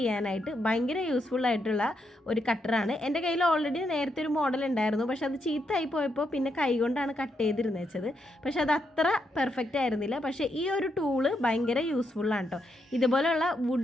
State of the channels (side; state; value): both; normal; correlation 0.80